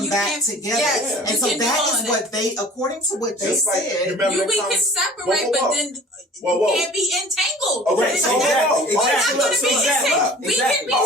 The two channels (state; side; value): normal; both; correlation 0.45